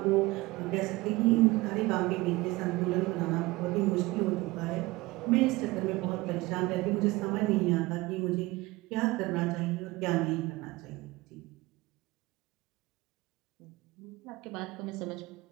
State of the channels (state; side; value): quieter; left; 20.8 dB